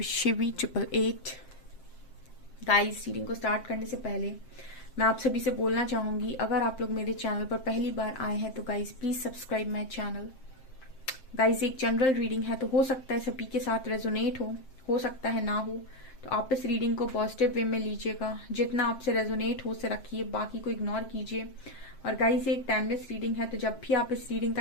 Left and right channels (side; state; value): right; late; 7.6 ms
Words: Shivi 888. Guys, reading को start करने से पहले मैं आप सभी से बोलना चाहूंगी, अगर आप लोग मेरे चैनल पर पहली बार आए हैं तो guys please subscribe my channel. Guys, एक जनरल रीडिंग है तो हो सकता है सभी के साथ रेजोनेट हो सकता है ना हो, तो आप इस रीडिंग को पॉजिटिव वे में लीजिएगा। जितना आपसे रेजोनेट हो उसे रखिए, बाकी को इग्नोर कीजिए। और गाइस, ये एक टाइमलेस रीडिंग है, तो जब भी आप इस रीडिंग